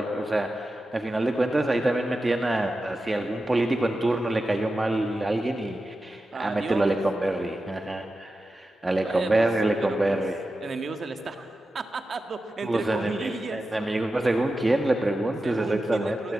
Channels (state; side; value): normal; both; correlation 0.92